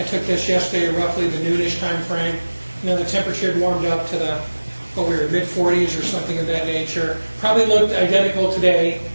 took this yesterday, roughly the noonish time frame. You know, the temperature had warmed up to we were mid-40s or something of that nature. Probably looked identical today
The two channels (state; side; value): inverted; both; correlation -1.00